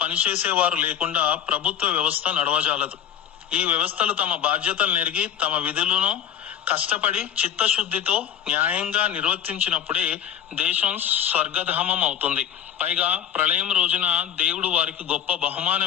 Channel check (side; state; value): right; quieter; 9.7 dB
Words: పనిచేసేవారు లేకుండా ప్రభుత్వ వ్యవస్థ నడవజాలదు. ఈ వ్యవస్థలు తమ బాధ్యతలు నెరిగి తమ విధులను కష్టపడి చిత్తశుద్ధితో న్యాయంగా నిర్వర్తించినప్పుడే దేశం స్వర్గధామం అవుతుంది. పైగా ప్రళయం రోజున దేవుడు వారికి గొప్ప